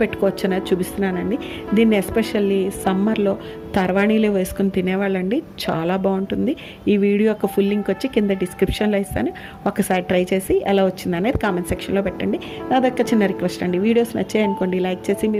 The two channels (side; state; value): both; identical; correlation 1.00